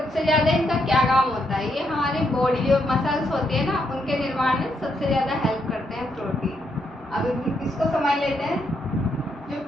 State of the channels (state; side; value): normal; both; correlation 0.78